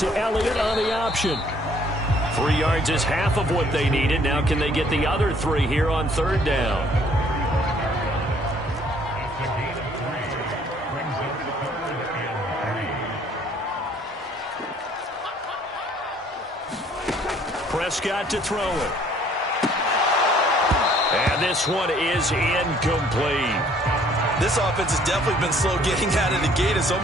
Elliott on the option. 3 yards is half of what they needed. Now can they get the other 3 here on 3rd down? Prescott to throw it. And this one is incomplete. This offense has definitely been slow getting out of the gate. It's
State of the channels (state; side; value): normal; both; correlation 0.60